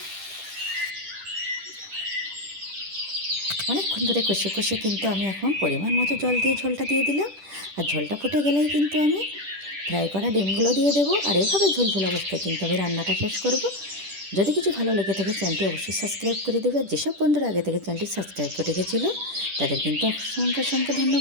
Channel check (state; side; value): late; left; 10 ms